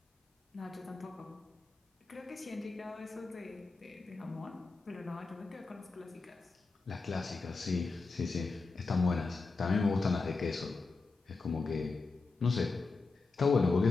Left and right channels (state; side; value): quieter; right; 4.0 dB